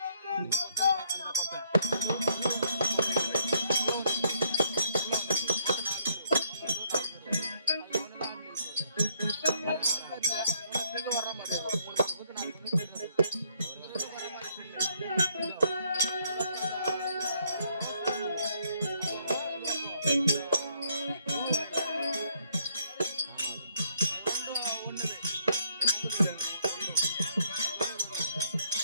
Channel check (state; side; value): inverted; both; correlation -0.68